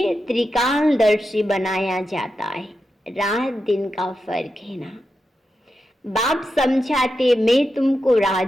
त्रिकालदर्शी बनाया जाता है, रात दिन का फर्क है ना। बाप समझाते मैं तुमको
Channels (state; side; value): normal; both; correlation 0.88